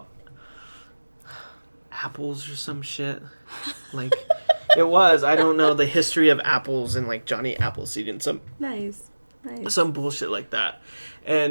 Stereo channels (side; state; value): both; inverted; correlation -1.00